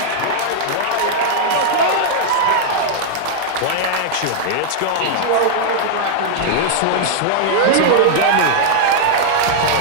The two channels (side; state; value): both; different; correlation -0.01